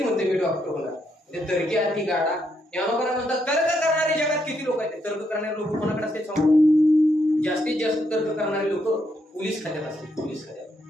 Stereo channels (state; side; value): normal; both; correlation 0.77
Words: म्हणते मी डॉक्टर होणार. ते तर्की आधी गाडा. ज्ञानोबा म्हणतात, तर्क करणारे जगात किती लोक आहेत? तर्क करणारे लोक कोणाकडे असते सांगू? जास्तीत जास्त तर्क करणारे लोक पोलीस खात्यात असते. पोलीस खात्यात,